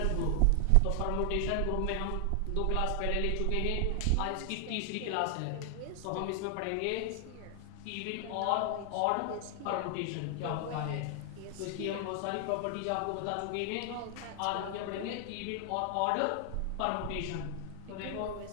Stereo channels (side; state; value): both; different; correlation 0.00